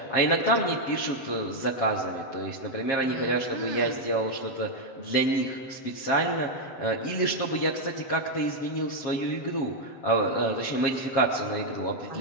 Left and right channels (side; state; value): right; late; 7.4 ms